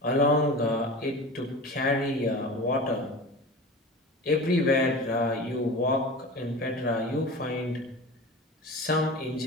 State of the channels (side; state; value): both; normal; correlation 0.33